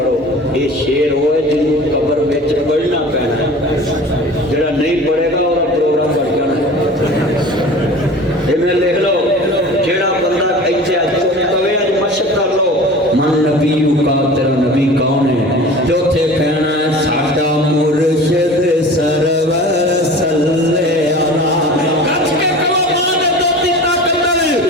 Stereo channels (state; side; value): normal; both; correlation 0.39